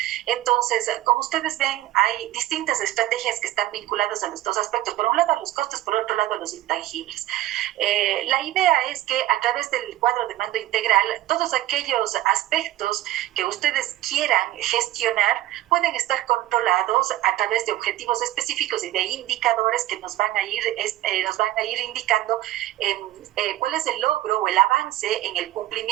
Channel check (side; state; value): left; quieter; 15.4 dB